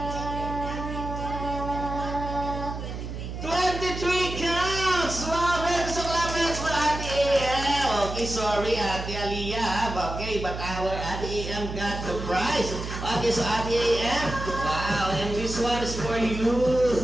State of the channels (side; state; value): right; noise; hum, 7 dB below the sound